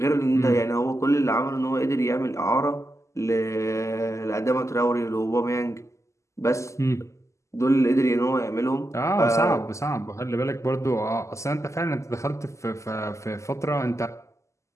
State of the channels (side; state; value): right; late; 0.14 ms